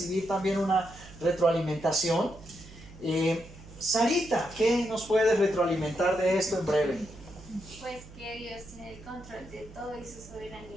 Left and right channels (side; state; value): right; noise; hum, 18 dB below the sound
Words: también una retroalimentación. Sarita, ¿qué nos puedes retroalimentar de esto en breve? Pues que Dios tiene el control de todo y su